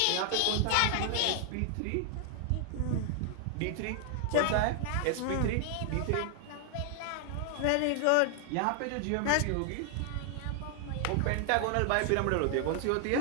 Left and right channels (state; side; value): different; both; correlation 0.00